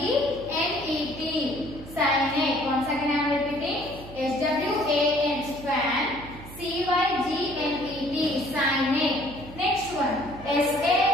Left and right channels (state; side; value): noise; right; hum, 15 dB below the sound